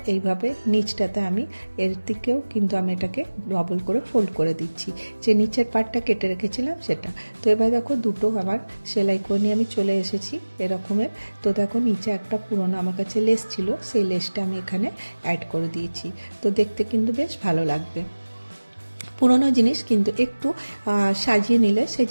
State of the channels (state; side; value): inverted; both; correlation -1.00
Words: এইভাবে নিচটাতে আমি এর দিকেও কিন্তু আমি এটাকে ডবল করে ফোল্ড করে দিচ্ছি, যে নিচের পার্টটা কেটে রেখেছিলাম সেটা। তো এবার দেখো দুটো আমার সেলাই করে নিয়ে আমি চলে এসেছি এরকমের। তো দেখো নিচে একটা পুরনো আমার কাছে লেস ছিল, সেই লেসটা আমি এখানে অ্যাড করে দিয়েছি। তো দেখতে কিন্তু বেশ ভালো লাগবে। পুরনো জিনিস কিন্তু একটু সাজিয়ে নিলে সেই